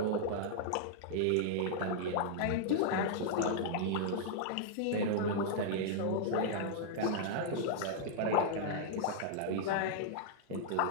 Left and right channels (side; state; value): both; different; correlation -0.01